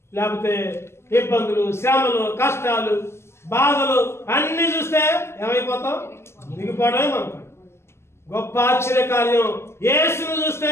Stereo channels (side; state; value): right; late; 0.12 ms